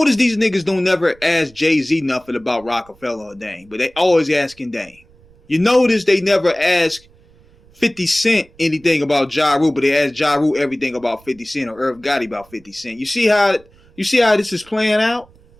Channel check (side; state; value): right; noise; rumble, 28 dB below the sound